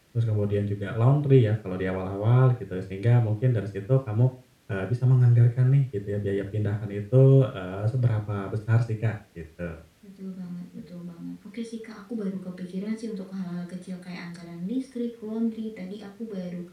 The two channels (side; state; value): both; identical; correlation 1.00